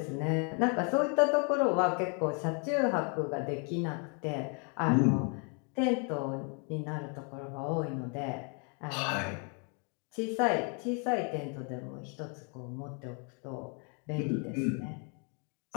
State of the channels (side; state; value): right; quieter; 37.7 dB